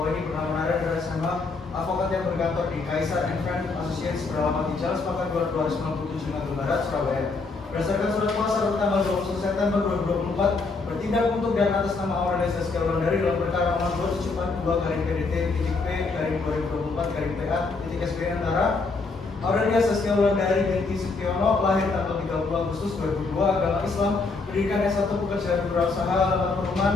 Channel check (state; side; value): quieter; right; 4.0 dB